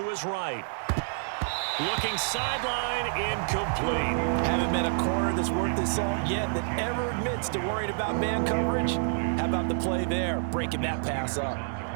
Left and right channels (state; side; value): silent; left; digital silence